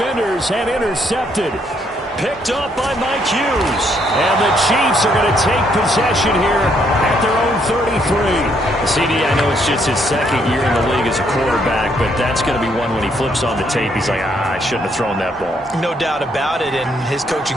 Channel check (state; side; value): normal; both; correlation 0.71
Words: and intercepted. Picked up by Mike Hughes. And the Chiefs are going to take possession here at their own 33. CD, I know it's just his 2nd year in the league as a quarterback, but that's going to be one when he flips on the tape. He's like, I shouldn't have thrown that ball. No doubt about it, and his coaching